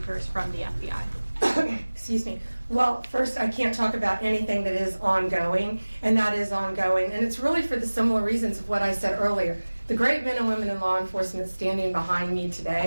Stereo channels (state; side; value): inverted; both; correlation -1.00